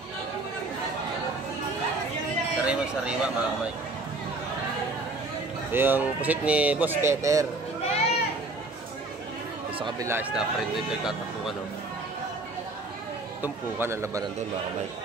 Sariwa-sariwa mga kamike. Ito yung pusit ni Boss Peter. Sa kabila is na friend ito yung tatapukan oh. Tumpukan ang labanan doon mga kamike.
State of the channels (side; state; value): left; quieter; 3.1 dB